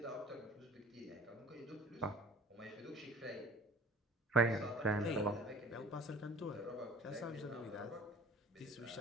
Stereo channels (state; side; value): normal; both; correlation 0.45